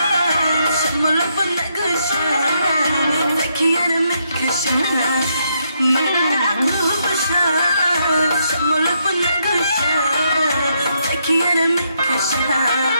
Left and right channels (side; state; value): both; inverted; correlation -0.77